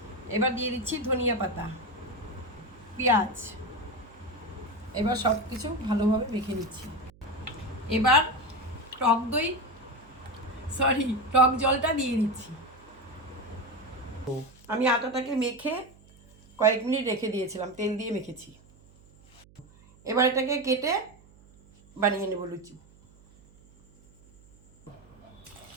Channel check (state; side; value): noise; right; hum, 26 dB below the sound